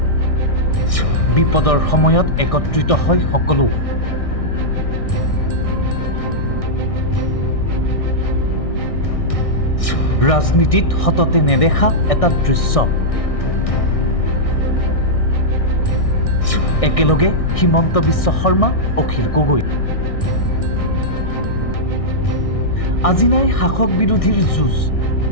বিপদৰ সময়ত একত্ৰিত হয় সকলো। ৰাজনীতিত সততে নেদেখা এটা দৃশ্য। একেলগে হিমন্ত বিশ্ব শৰ্মা, অখিল গগৈ। আজি নাই শাসক বিৰোধীৰ যুঁজ,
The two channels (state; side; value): late; right; 1.6 ms